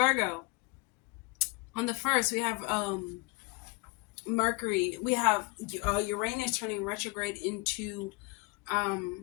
on the 1st, we have Mercury, we have Uranus turning retrograde into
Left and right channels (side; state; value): right; quieter; 26.0 dB